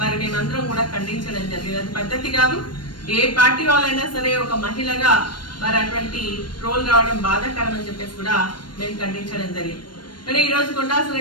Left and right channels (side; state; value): right; late; 0.71 ms